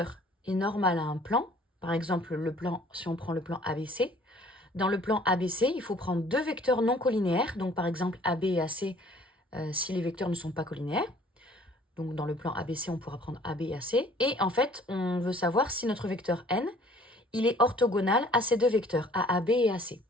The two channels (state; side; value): normal; both; correlation 0.55